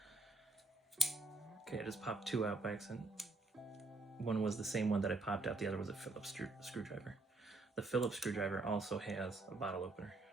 Okay, I just popped two out by accident. One was the same one that I popped out. The other was a Phillips screwdriver. The Phillips screwdriver also has a bottle opener,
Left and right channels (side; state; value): left; quieter; 3.1 dB